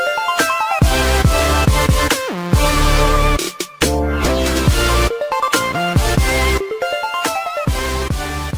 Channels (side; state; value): both; identical; correlation 1.00